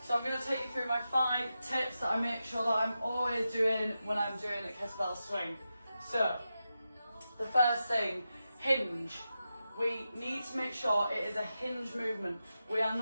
So I'm going to take you through my 5 tips that I make sure that I'm always doing when I'm doing a kettlebell swing. So, the first thing, hinge. We need to make sure it is a hinge movement. We are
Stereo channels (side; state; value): both; inverted; correlation -0.90